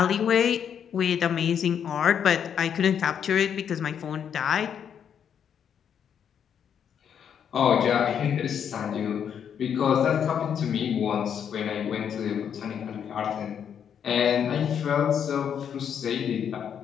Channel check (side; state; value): right; quieter; 8.2 dB